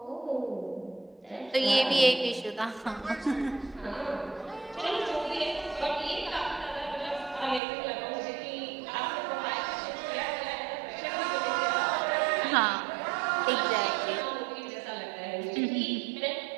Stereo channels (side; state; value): left; drops out; at 7.6 s